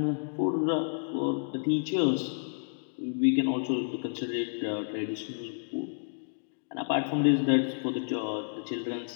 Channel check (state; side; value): silent; right; digital silence